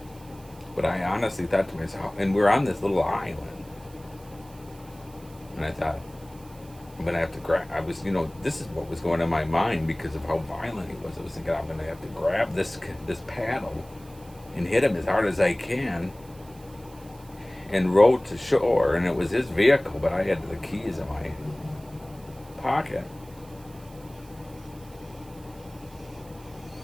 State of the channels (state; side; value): noise; right; hiss, 24 dB below the sound